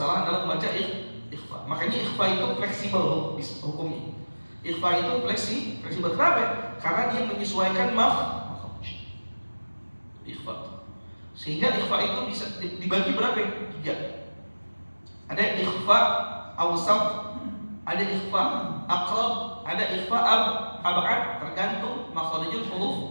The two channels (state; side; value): inverted; both; correlation -1.00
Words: dalam membaca ikhfa. Makanya ikhfa itu fleksibel hukumnya. Ikhfa itu fleksibel. Kenapa? Karena dia menyesuaikan makhraj. Ikhfa. Sehingga ikhfa itu bisa dibagi berapa? 3. Ada ikhfa awsat, ada ikhfa aqrab, ada ikhfa ab'ad, tergantung makhrijul